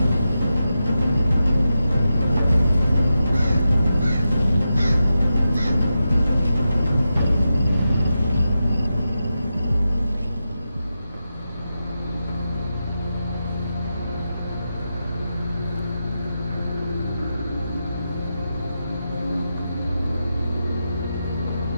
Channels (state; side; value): inverted; both; correlation -0.89